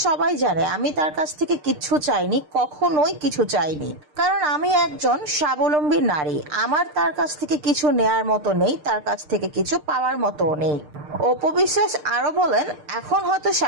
সবাই জানে আমি তার কাছ থেকে কিচ্ছু চাইনি, কখনোই কিছু চাইনি। কারণ আমি একজন স্বাবলম্বী নারী, আমার তার কাছ থেকে কিছু নেয়ার মতো নেই, তার কাছ থেকে কিছু পাওয়ার মতো নেই। অপু বিশ্বাস আরো বলেন, এখন হয়তো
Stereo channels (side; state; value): left; late; 6.6 ms